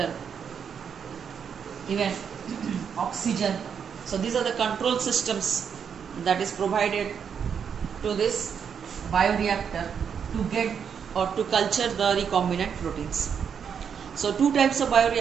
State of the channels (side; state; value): left; quieter; 7.2 dB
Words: even oxygen. So these are the control systems that is provided to this bioreactor to get or to culture the recombinant proteins. So two types of